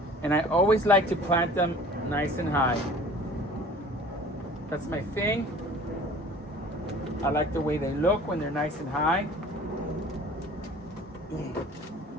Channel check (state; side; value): normal; both; correlation 0.46